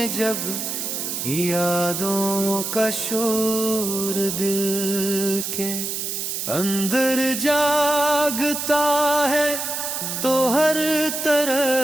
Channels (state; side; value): noise; right; hiss, 3 dB below the sound